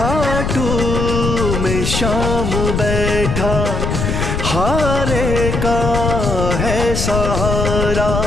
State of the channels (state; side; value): noise; left; rumble, 1 dB below the sound